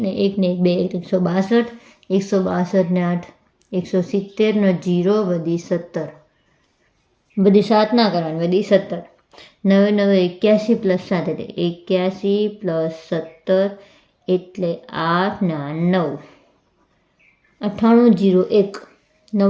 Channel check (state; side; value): identical; both; correlation 1.00